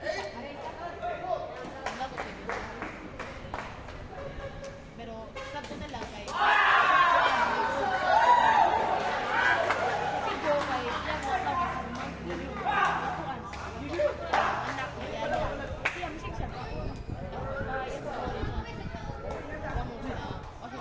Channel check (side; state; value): both; identical; correlation 1.00